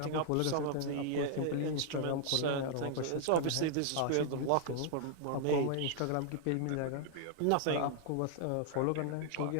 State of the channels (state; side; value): different; both; correlation 0.00